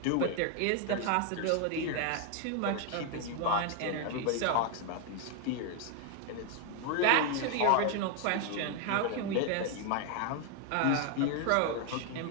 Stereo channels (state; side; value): different; both; correlation 0.01